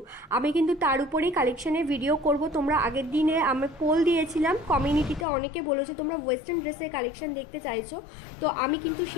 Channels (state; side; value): drops out; right; at 5.2 s